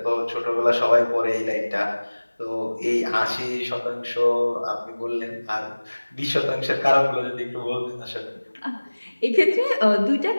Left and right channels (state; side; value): inverted; both; correlation -1.00